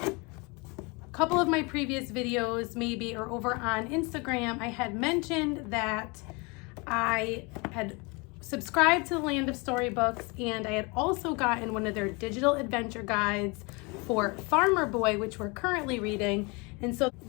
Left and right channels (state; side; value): quieter; right; 28.6 dB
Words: a couple of my previous videos maybe, or over on Instagram, I had mentioned that I had subscribed to the Land of Storybooks, and I had also gotten one of their digital adventure guides for Farmer Boy, which we're currently reading. And so